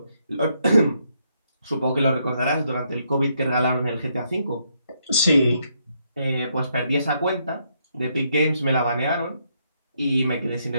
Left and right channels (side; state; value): both; inverted; correlation -0.75